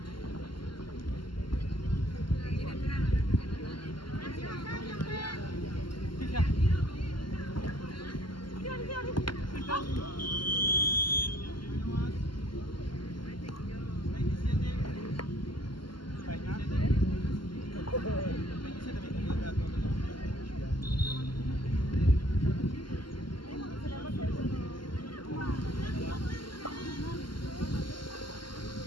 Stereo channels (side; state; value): right; late; 0.72 ms